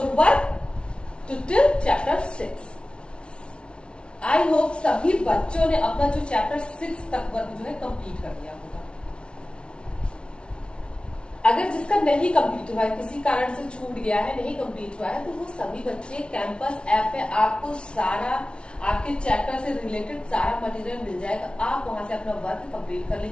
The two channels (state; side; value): late; right; 0.057 ms